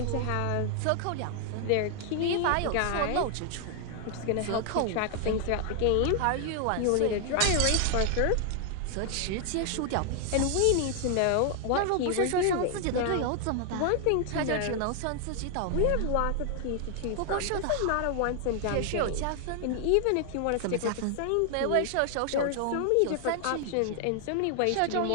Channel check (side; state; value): both; different; correlation 0.00